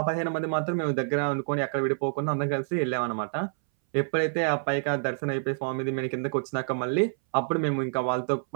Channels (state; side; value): silent; left; 60 dB below the other